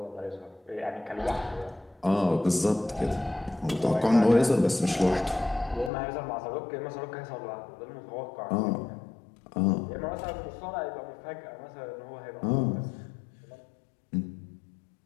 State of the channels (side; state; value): right; drops out; at 5.9 s